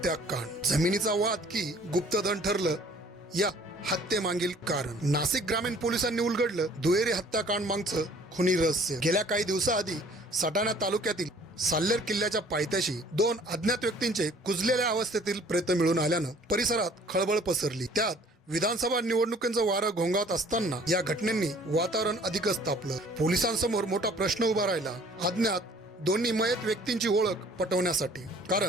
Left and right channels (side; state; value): both; normal; correlation 0.55